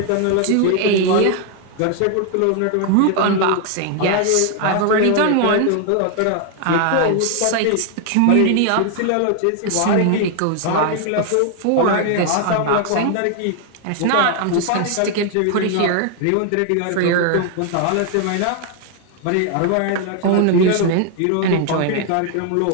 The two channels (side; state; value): both; different; correlation 0.00